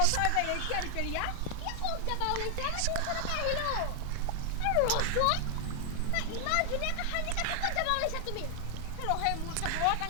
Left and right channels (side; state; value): both; different; correlation 0.00